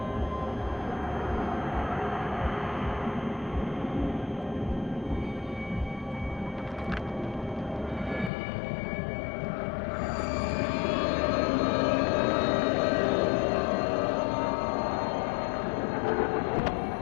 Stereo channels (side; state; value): right; drops out; at 8.3 s